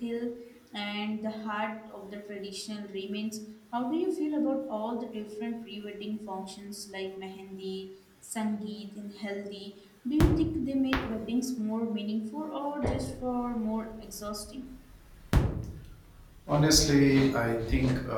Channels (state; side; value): identical; both; correlation 1.00